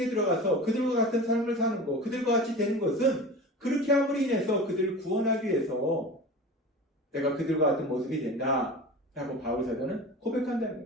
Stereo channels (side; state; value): both; normal; correlation 0.34